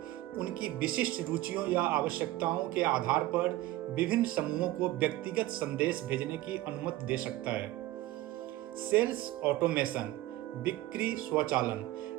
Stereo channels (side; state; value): left; quieter; 16.6 dB